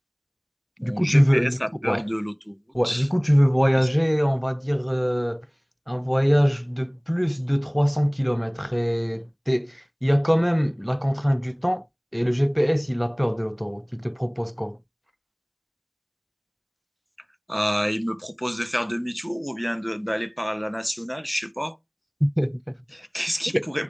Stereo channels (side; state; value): both; identical; correlation 1.00